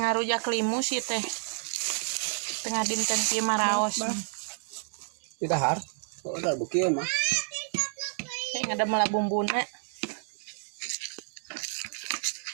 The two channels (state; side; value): silent; left; 58 dB below the other